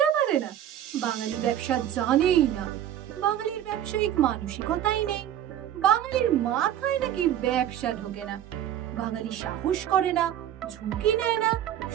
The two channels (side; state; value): left; quieter; 11.1 dB